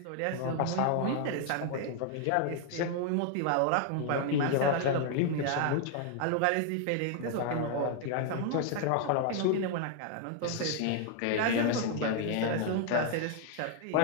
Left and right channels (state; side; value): different; both; correlation 0.00